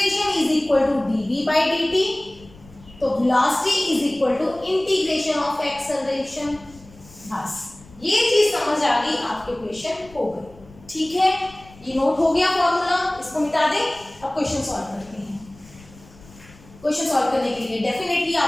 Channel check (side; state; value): left; noise; rumble, 23 dB below the sound